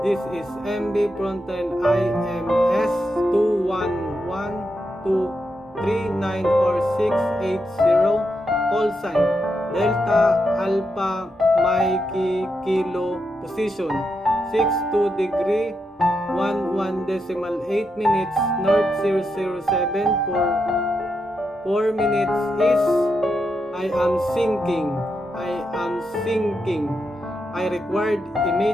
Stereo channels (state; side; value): normal; both; correlation 0.84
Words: This is MB Frontline IMS 211-239 or 680. Call sign Delta Alpha Mikey Kilo position 62 degree 11 decimal 8 minutes north 007 for 4 minutes is I am sinking. I required